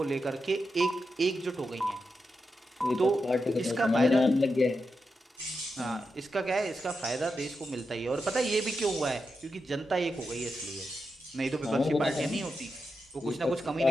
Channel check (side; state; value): both; normal; correlation 0.87